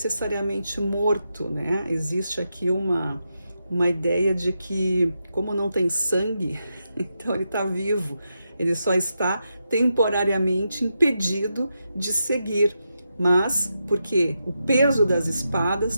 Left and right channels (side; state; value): both; inverted; correlation -0.86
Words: morto, né? Existe aqui uma ideia de que, como não tem sangue, então ele está vivo, ele só está temporariamente impedido de seguir. Mas porque o peso das espadas